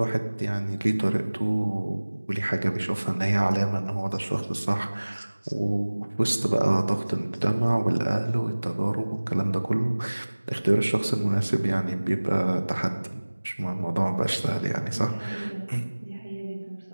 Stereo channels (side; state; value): both; inverted; correlation -1.00